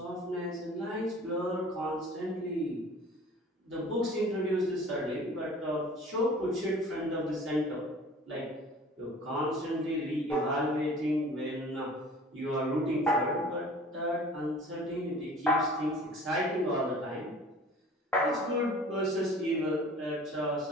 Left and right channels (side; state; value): both; normal; correlation 0.46